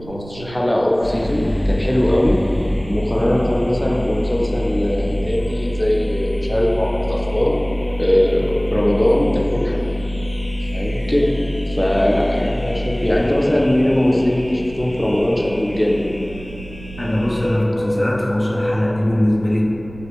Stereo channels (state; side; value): noise; right; rumble, 17 dB below the sound